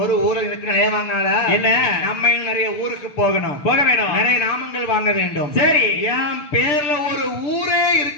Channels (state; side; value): late; right; 6.8 ms